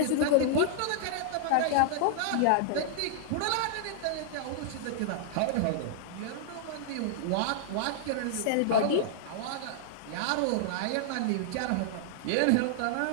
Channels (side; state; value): both; different; correlation -0.01